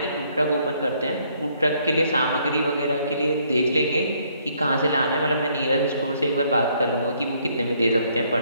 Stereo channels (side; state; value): both; inverted; correlation -0.67